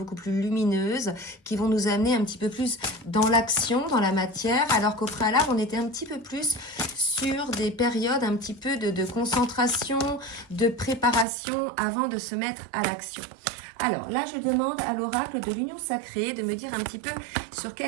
plus lumineuses, qui vont nous amener un petit peu plus dans l'action, dans la matière, alors qu'au préalable on était un petit peu plus sur des périodes un petit peu de concentration, de préparation avant de se mettre à l'action. Alors là, je demande à l'oracle de l'Union Sacrée de me dire un petit peu sur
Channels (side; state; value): left; drops out; at 11.2 s